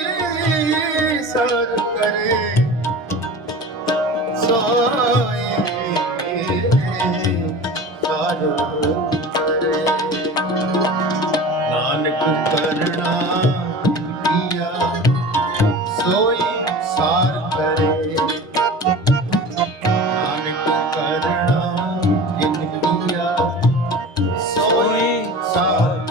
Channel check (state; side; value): normal; both; correlation 0.36